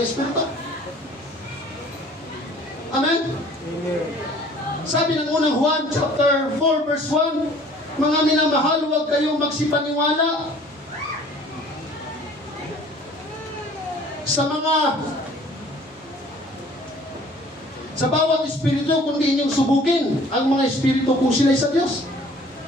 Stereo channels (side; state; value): both; normal; correlation 0.52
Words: Espiritu? Amen? Amen. Sabi ng unang Juan chapter 4 verse 1, mga minamahal, huwag kayong magsipaniwala sa bawat espiritu, kundi inyong subukin ang mga espiritu kung sila'y sa Diyos.